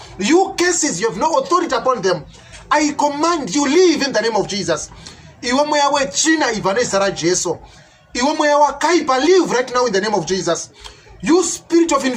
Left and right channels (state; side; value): identical; both; correlation 1.00